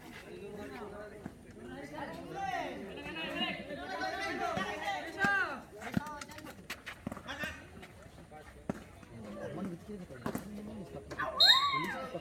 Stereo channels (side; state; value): both; identical; correlation 1.00